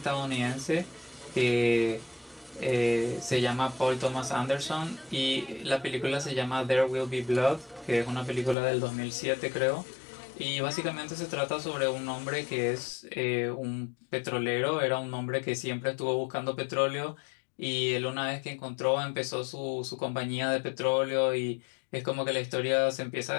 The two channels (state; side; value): drops out; right; at 8.6 s